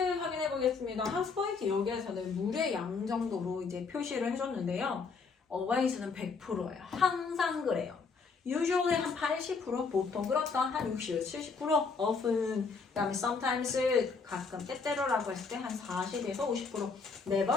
보겠습니다. 학습 포인트 여기에서는 물의 양 정도로 이제 표시를 해줬는데요. always는 100%예요. 항상 그래요. usually 한 80%, 보통 그렇다 한 60, 70%, often, 그 다음에 sometimes, 가끔, 때때로라고 했을 때 한 40에서 50%.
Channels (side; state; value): right; quieter; 4.8 dB